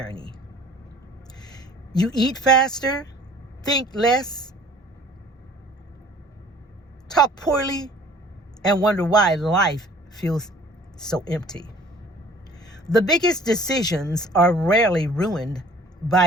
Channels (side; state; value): both; normal; correlation 0.52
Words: You eat faster, think less, talk poorly, and wonder why life feels so empty. The biggest decisions are rarely ruined